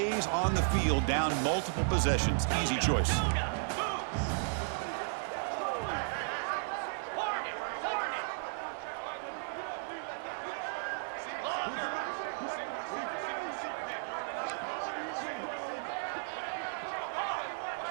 on the field, down multiple possessions. Easy choice.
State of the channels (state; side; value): silent; left; digital silence